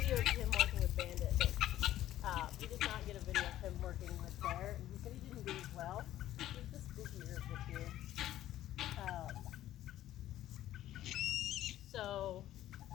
video of him working with Bandit, but he did not get a video of him working with Bear. And he said he didn't do as well. He's the spookier of the two. So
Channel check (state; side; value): quieter; right; 13.4 dB